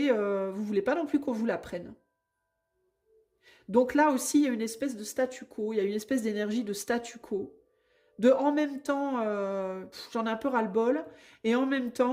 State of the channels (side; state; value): both; identical; correlation 1.00